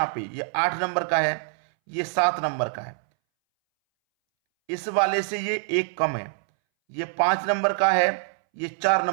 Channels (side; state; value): left; silent; 62 dB below the other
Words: पे ये 8 नंबर का है, ये 7 नंबर का है, इस वाले से ये 1 कम है, ये 5 नंबर का है, ये 4